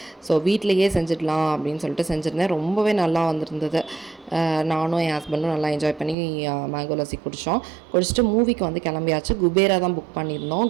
ஸோ வீட்டிலையே செஞ்சிடலாம் அப்படின்னு சொல்லிட்டு செஞ்சுருந்தேன். ரொம்பவே நல்லா வந்திருந்தது. நானும் என் ஹஸ்பண்டும் நல்லா என்ஜாய் பண்ணி மேங்கோ லஸ்ஸி குடிச்சிட்டு மூவிக்கு வந்து கிளம்பியாச்சு. குபேரா தான் புக் பண்ணியிருந்தோம்,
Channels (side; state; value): left; drops out; at 6.2 s